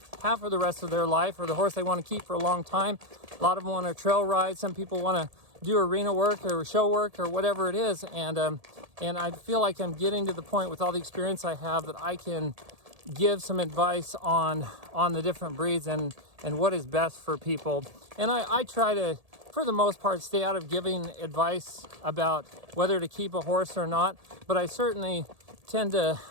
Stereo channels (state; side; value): late; left; 1.7 ms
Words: have for the rest of their life, or the horse they want to keep for a long time. A lot of them want to trail ride. Some people want to do arena work or show work or whatever it is. And I feel like I'm getting to the point with all the experience I have that I can give some advice on the different breeds and what is best for people. And I try to, for the most part, stay out of giving advice about whether to keep a horse or not, but I certainly tend to,